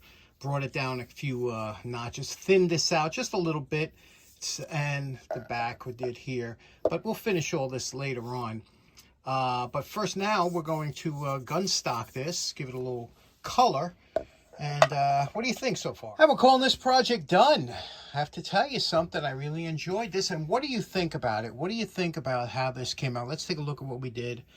brought it down a few notches, thinned this out just a little bit, and the back we did here. But we'll finish all this later on. But first now we're going to gun stock this, give it a little color. And what do you think so far? We're calling this project done. I have to tell you something. I really enjoyed this. And what do you think about it? What do you think about how this came out? Let's take a look at what we did.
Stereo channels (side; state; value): both; identical; correlation 1.00